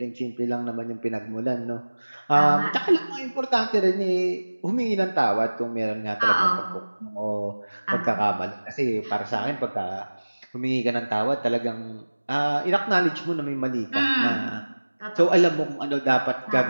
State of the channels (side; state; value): both; inverted; correlation -1.00